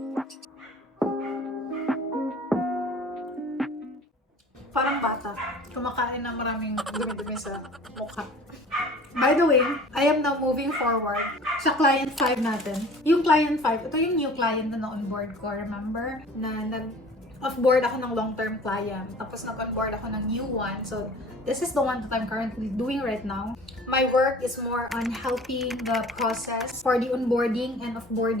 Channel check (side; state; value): both; normal; correlation 0.45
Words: Parang bata. Kumakain na maraming dumi-dumi sa mukha. By the way, I am now moving forward sa client 5 natin. Yung client 5, ito yung new client na na-onboard ko. Remember? Na nag-off-board ako ng long-term client. Tapos nag-onboard ako ng new one. So, this is the one that I'm currently doing right now. My work is more on helping the process for the onboarding and